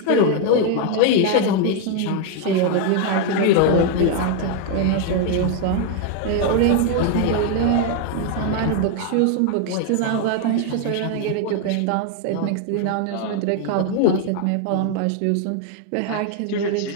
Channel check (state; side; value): different; both; correlation 0.00